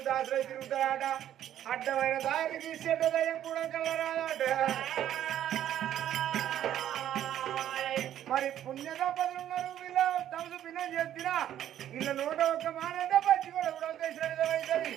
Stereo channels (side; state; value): left; quieter; 11.3 dB